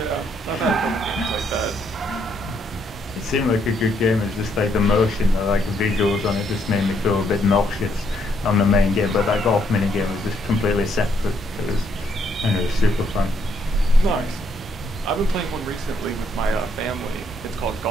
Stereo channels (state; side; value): normal; both; correlation 0.72